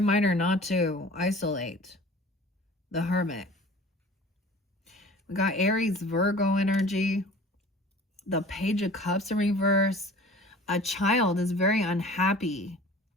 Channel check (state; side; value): normal; both; correlation 0.44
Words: not to isolate. The Hermit. We got Aries, Virgo energy. The Page of Cups in reverse. A child is very unhappy.